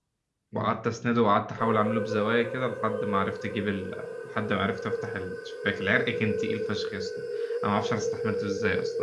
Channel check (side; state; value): both; identical; correlation 1.00